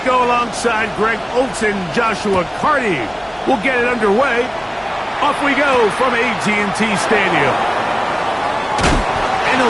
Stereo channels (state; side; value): identical; both; correlation 1.00